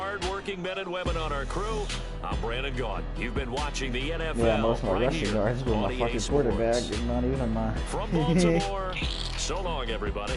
men and women on our crew, I'm Brandon Gaughan. You've been watching the NFL. Yeah, most of my right rushing yards with my fucking quarterback. Not even my... From Baltimore, so long,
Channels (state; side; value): identical; both; correlation 1.00